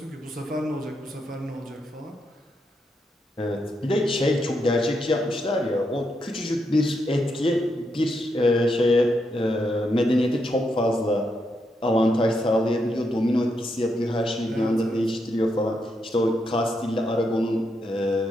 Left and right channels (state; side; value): normal; both; correlation 0.81